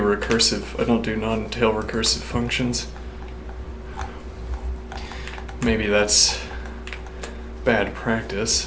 non-tail recursive functions. Maybe that's bad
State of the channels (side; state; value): both; identical; correlation 1.00